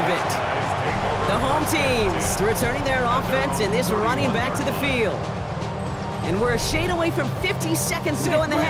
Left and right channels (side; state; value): both; identical; correlation 1.00